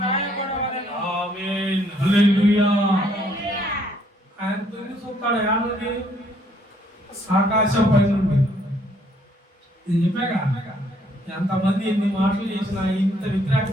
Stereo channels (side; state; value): both; normal; correlation 0.66